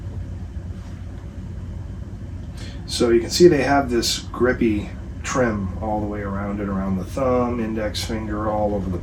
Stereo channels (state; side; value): identical; both; correlation 1.00